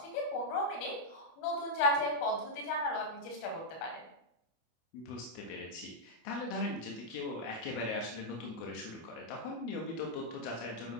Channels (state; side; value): late; right; 25 ms